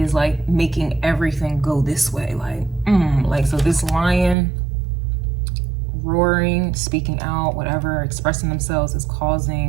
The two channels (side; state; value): left; drops out; at 4.4 s